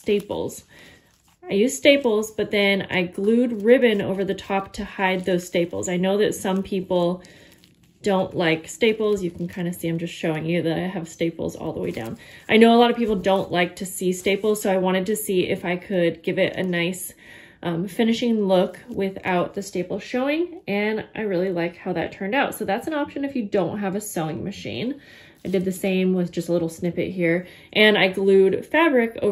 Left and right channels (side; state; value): both; identical; correlation 1.00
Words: But then I glued ribbon over the top to hide those staples. I know that some people don't like staples, you can kind of see I'm just showing you that I have staples all the way down. I know a lot of people don't like to see staples, so I wanted to see if I could give it a nice finishing look without the staples showing, and I really like how that turned out. So that's an option if you don't have a sewing machine. I did the same with just a little snippet here, and I glued fabric